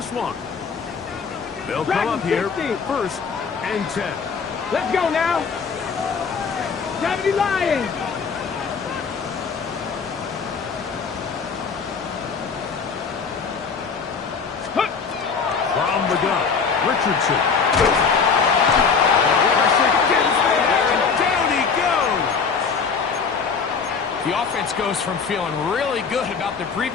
one? They'll come up here first and 10. Let's go now. 70 Lions. From the gun, Richardson. Down he goes. The offense goes from feeling really good about the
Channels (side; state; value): right; quieter; 5.6 dB